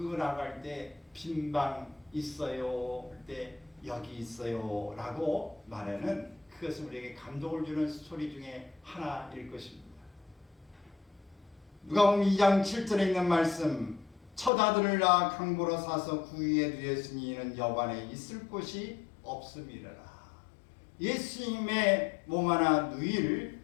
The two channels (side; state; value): right; drops out; at 14.5 s